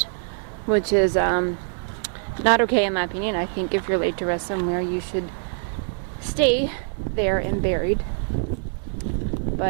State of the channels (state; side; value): silent; left; 63 dB below the other